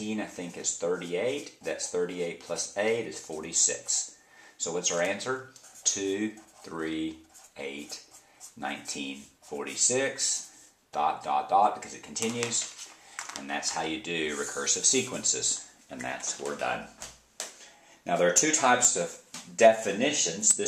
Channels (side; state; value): both; identical; correlation 1.00